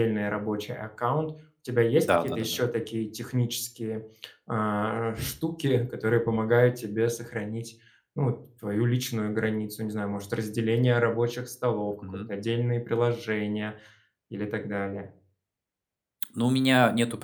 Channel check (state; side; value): identical; both; correlation 1.00